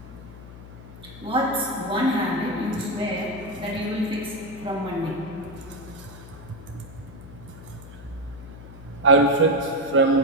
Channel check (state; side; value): noise; left; hum, 16 dB below the sound